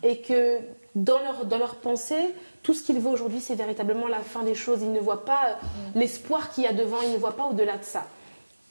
et que dans leur pensée, tout ce qu'ils voient aujourd'hui, c'est véritablement la fin des choses. Ils ne voient pas l'espoir qu'il y a devant, ils ne voient pas au-delà de ça.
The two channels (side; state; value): both; inverted; correlation -1.00